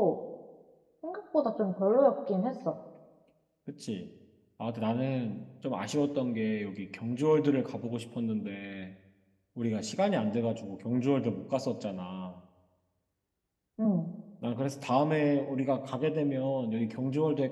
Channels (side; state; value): both; identical; correlation 1.00